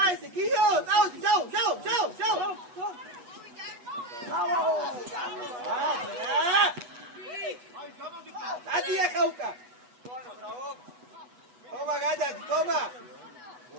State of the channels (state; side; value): late; left; 8.1 ms